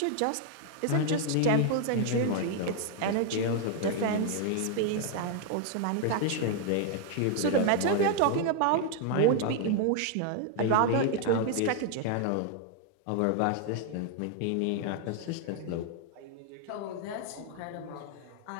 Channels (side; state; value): both; different; correlation 0.00